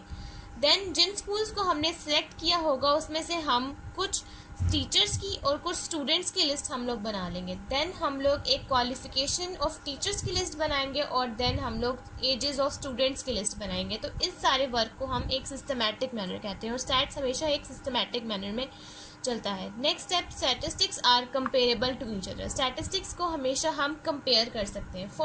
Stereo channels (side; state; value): both; identical; correlation 1.00